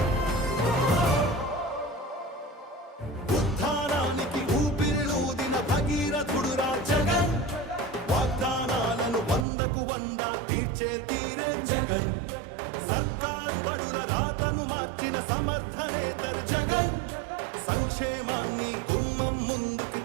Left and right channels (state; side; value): drops out; left; at 9.5 s